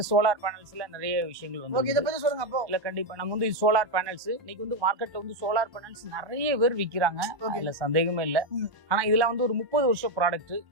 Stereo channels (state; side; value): late; left; 1.1 ms